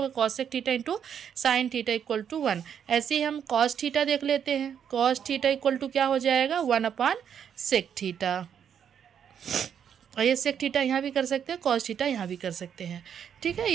cosec theta into sine theta equal to 1। ऐसे ही हम कॉस थीटा देख लेते हैं। कॉस थीटा इक्वल टू क्या हो जाएगा? 1 सेक थीटा। और ये सेक थीटा यहाँ भी कर सकते हैं, कॉस थीटा यहाँ भी कर सकते हैं। ठीक है,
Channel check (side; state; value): left; quieter; 8.3 dB